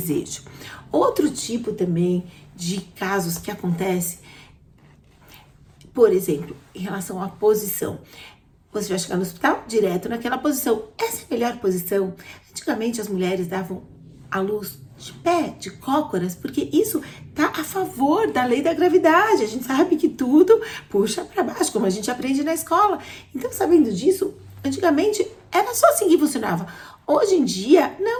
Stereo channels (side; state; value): both; identical; correlation 1.00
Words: Outro tipo também de casos que acontece, por exemplo, em relação à posição. Você vai chegar no hospital direto naquela posição. Essa é a melhor posição. Antigamente as mulheres davam à luz de pé, de cócoras, porque isso tá a favor da lei da gravidade. A gente sabe que tudo puxa para baixo, como a gente aprende na escola. Então, sabendo disso, antigamente era só assim que funcionava. Hoje em dia,